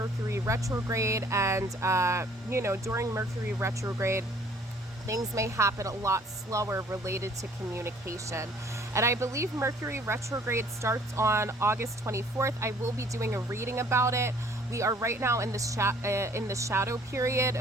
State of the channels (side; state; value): both; normal; correlation 0.56